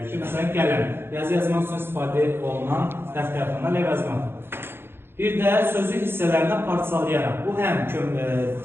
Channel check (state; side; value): late; left; 0.11 ms